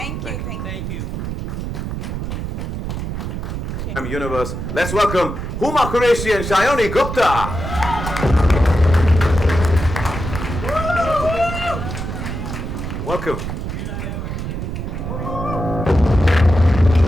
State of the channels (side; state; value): right; noise; rumble, 5 dB below the sound